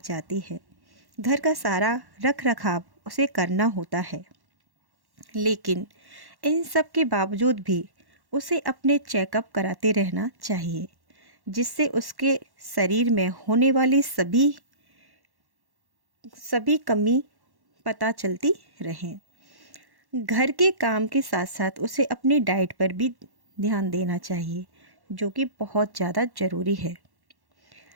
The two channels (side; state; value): left; late; 1.1 ms